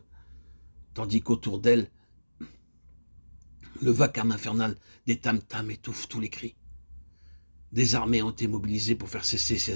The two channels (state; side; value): inverted; both; correlation -1.00